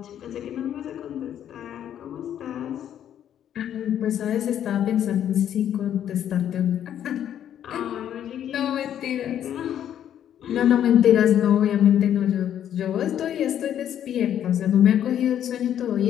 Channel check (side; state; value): right; quieter; 10.2 dB